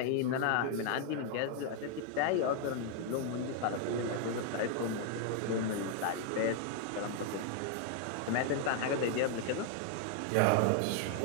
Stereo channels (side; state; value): both; different; correlation 0.00